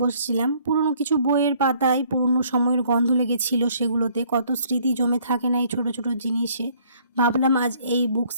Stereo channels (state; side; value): inverted; both; correlation -0.62